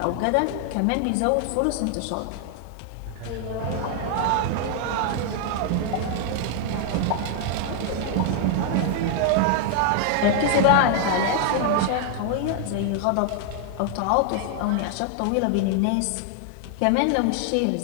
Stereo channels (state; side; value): different; both; correlation 0.00